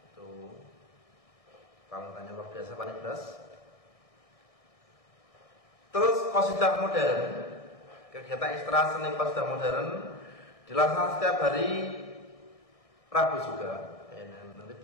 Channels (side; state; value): right; late; 1.6 ms